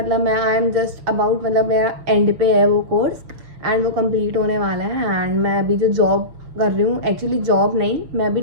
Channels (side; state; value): left; late; 6.7 ms